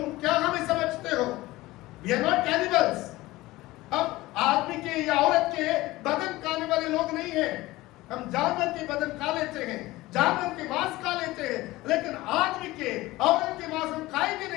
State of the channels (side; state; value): right; quieter; 18.7 dB